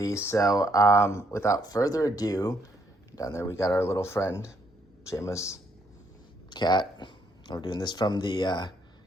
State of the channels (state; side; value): normal; both; correlation 0.72